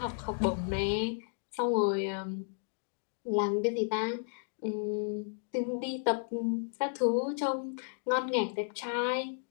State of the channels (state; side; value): silent; right; digital silence